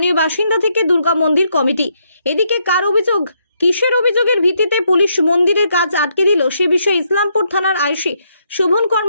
বাসিন্দা থেকে দুর্গা মন্দির কমিটি। এদিকে কার অভিযোগ, কিসের অভিযোগের ভিত্তিতে পুলিশ মন্দিরের কাজ আটকে দিল সে বিষয়ে ইসলামপুর থানার আইসি শোভন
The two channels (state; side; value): inverted; both; correlation -0.75